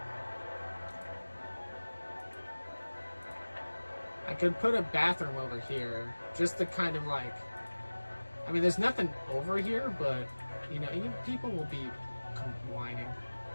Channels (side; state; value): both; inverted; correlation -1.00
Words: I could put a bathroom over here, just to kind of like, I mean, there's nothing over here, but, you know, people will be whining.